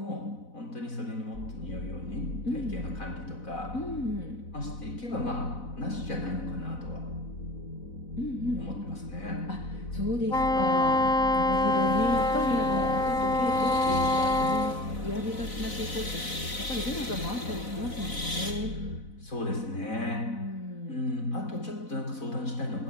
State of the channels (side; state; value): right; late; 4.0 ms